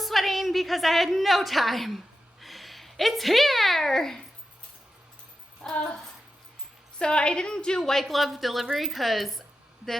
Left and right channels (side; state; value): both; normal; correlation 0.91